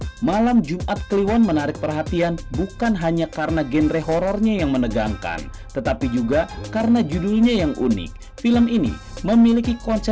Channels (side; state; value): both; identical; correlation 1.00